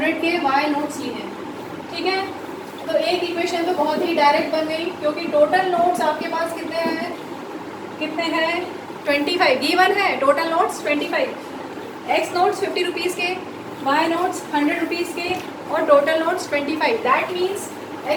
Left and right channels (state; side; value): identical; both; correlation 1.00